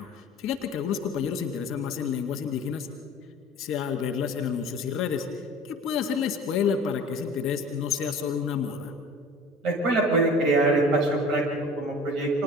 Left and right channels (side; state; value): both; normal; correlation 0.42